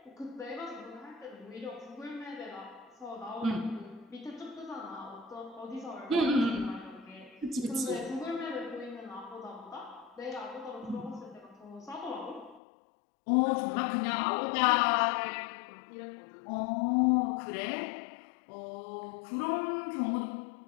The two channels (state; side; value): drops out; right; at 12.6 s